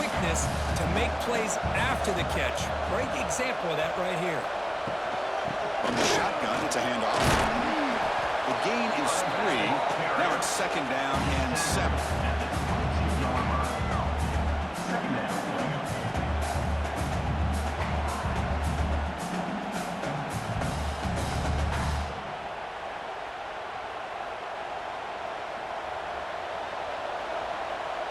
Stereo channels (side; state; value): both; identical; correlation 1.00